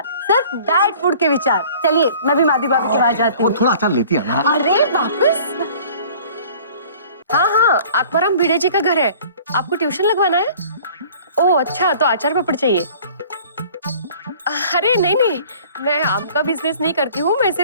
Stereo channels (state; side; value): inverted; both; correlation -0.49